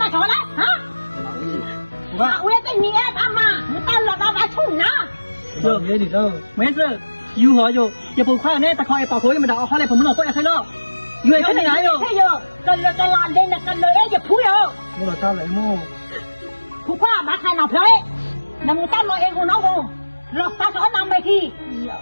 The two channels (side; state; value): both; inverted; correlation -1.00